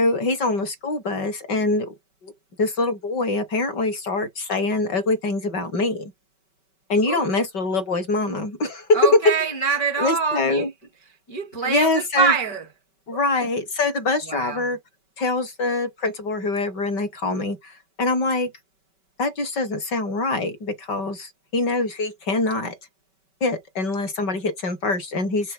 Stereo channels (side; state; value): right; late; 5.2 ms